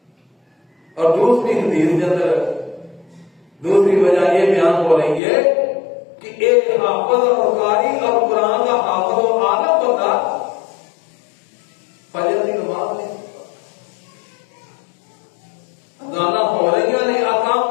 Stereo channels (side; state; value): right; drops out; at 5.2 s